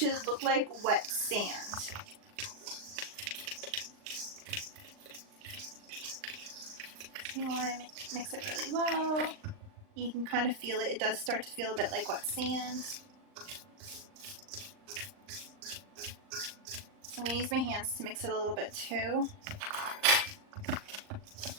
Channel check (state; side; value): late; left; 39 ms